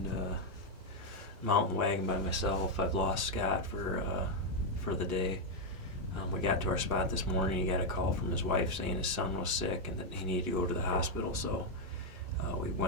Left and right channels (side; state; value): left; late; 2.0 ms